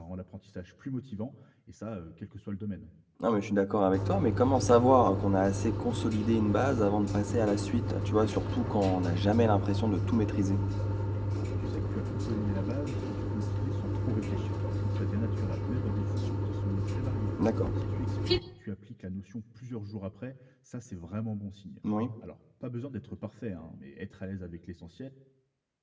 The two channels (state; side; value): identical; both; correlation 1.00